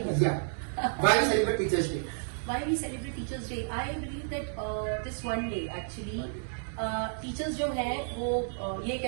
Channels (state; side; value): silent; left; 57 dB below the other